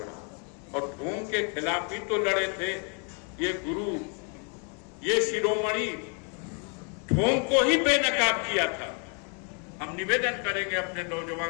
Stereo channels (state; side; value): quieter; right; 38.7 dB